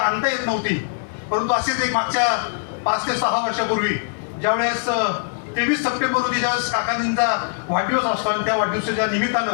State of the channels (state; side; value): silent; right; digital silence